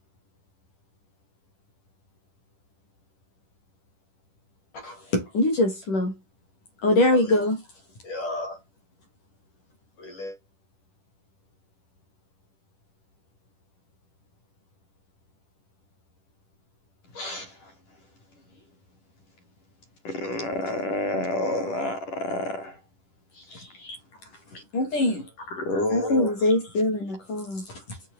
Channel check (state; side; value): late; right; 10 ms